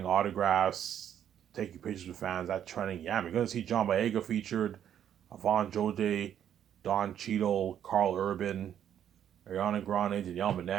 autographs, taking pictures with fans. That trending. Yeah, you're gonna see John Boyega featured, Avon Jode, Don Cheadle, Carl Urban, Ariana Grande, Danielle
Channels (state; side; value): quieter; left; 9.8 dB